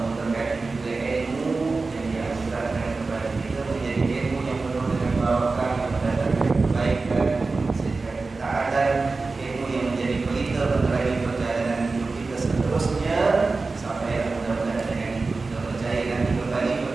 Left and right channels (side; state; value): left; quieter; 3.9 dB